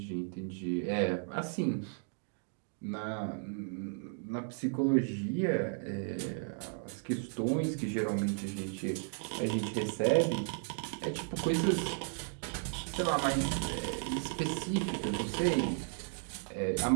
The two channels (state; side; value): silent; left; 55 dB below the other